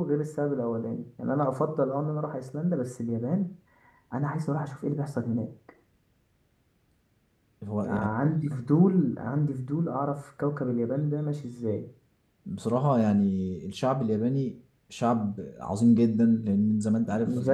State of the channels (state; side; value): identical; both; correlation 1.00